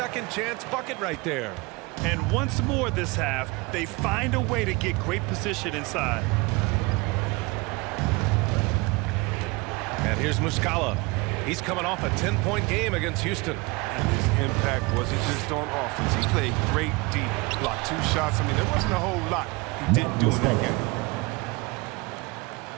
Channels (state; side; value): quieter; left; 25.1 dB